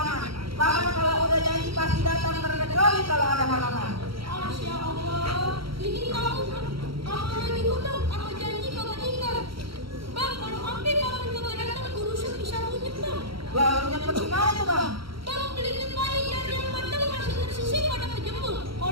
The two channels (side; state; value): left; late; 0.74 ms